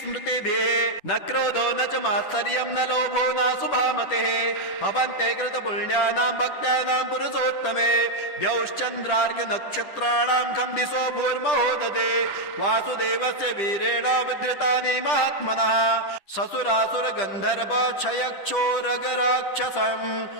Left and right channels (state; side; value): late; right; 10 ms